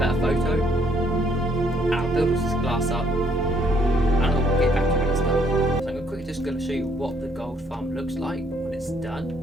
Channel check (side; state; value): both; normal; correlation 0.67